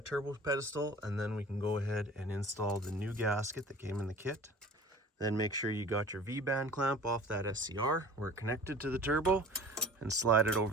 turbo pedestal, and then we can go ahead and install the new gasket that came in the kit. Then make sure you got your V-band clamp off that SCR where it connected to the turbo, and slide it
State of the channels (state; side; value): normal; both; correlation 0.43